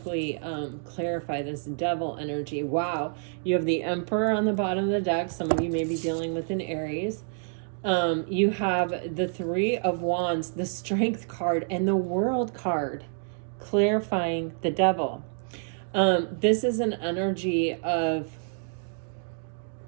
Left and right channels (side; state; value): left; silent; 59 dB below the other